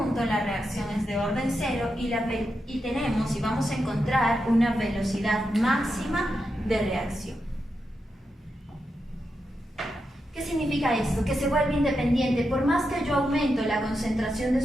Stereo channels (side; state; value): both; normal; correlation 0.87